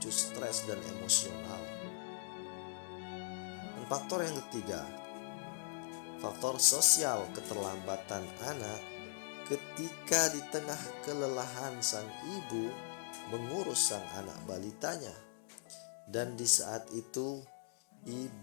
stres dan emosional. Dan faktor yang ketiga, faktor sosial keterlambatan anak ketika di tengah kelelahan sang ibu mengurus sang anak balitanya. Dan di saat itu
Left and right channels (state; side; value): silent; right; digital silence